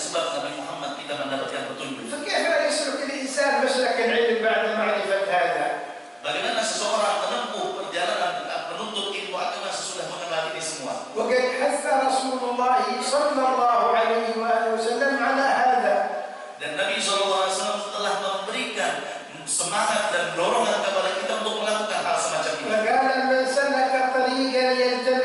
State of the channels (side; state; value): both; identical; correlation 1.00